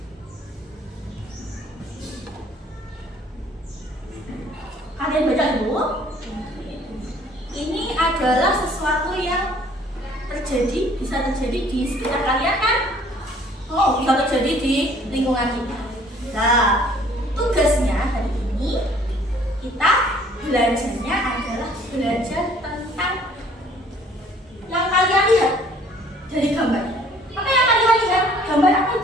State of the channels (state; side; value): normal; both; correlation 0.57